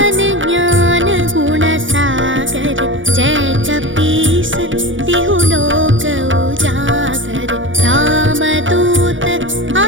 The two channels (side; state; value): left; late; 0.56 ms